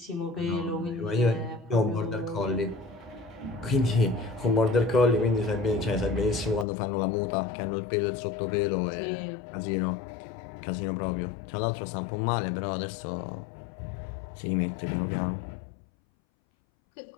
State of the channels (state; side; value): drops out; right; at 6.7 s